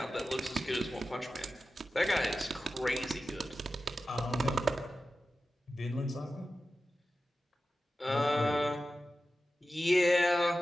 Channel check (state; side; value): normal; both; correlation 0.93